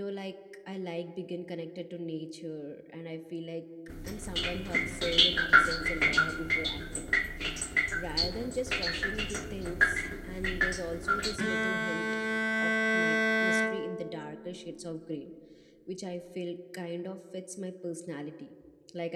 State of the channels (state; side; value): identical; both; correlation 1.00